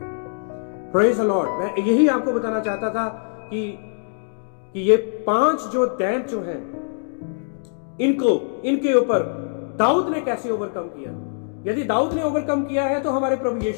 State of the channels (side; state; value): right; silent; digital silence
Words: Praise the lord. मैं यही आपको बताना चाहता था कि ये 5 जो दैंत जो हैं, इनके ऊपर दाऊद ने कैसे ओवरकम किया। यदि दाऊद ने ओवरकम किया है तो हमारे प्रभु